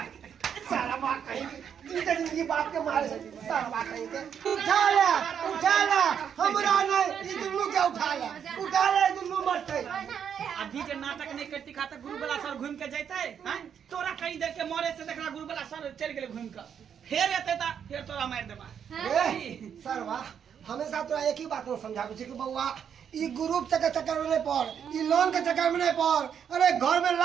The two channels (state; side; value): quieter; left; 8.1 dB